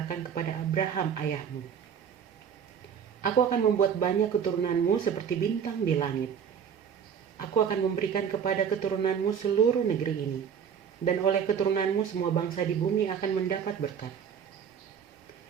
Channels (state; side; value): quieter; left; 7.7 dB